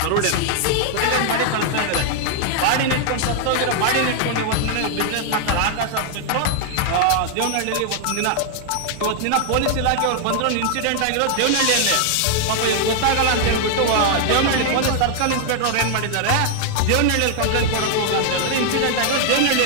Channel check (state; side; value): different; both; correlation 0.00